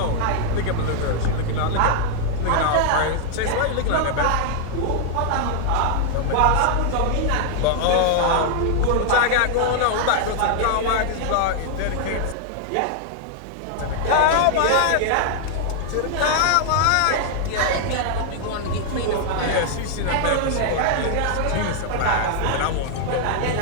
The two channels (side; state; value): both; different; correlation 0.00